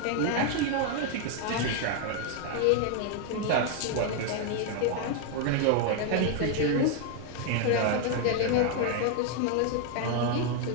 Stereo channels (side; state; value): both; different; correlation 0.00